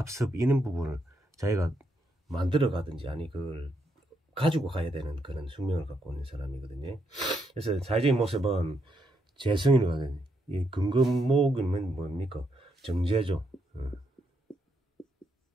이런 부분을 자기가 만들어 가든지 아니 그걸 가지고 가야 되는 그런 숙명을 갖고 있는 사람이거든요. 그래서 사회적인 모습은 재성이거든요. 이 근검목이면 뭡니까? 정제죠.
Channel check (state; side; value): normal; both; correlation 0.78